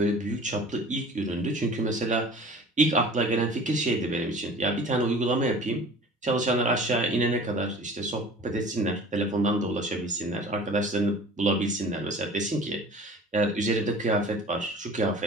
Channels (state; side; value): normal; both; correlation 0.43